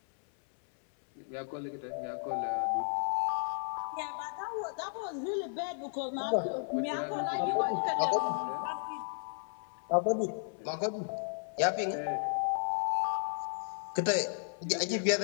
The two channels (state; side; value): silent; right; 55 dB below the other